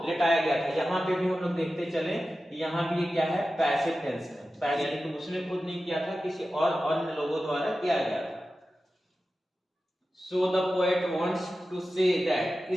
लिटाया गया था। यहाँ पे भी हम लोग देखते चले, यहाँ भी ये क्या है? पैसिव टेंस है, पैसिव यानी कि उसने खुद नहीं किया था, किसी और अन्य लोगों द्वारा किया गया था। So the poet wants to say that,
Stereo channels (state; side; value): normal; both; correlation 0.93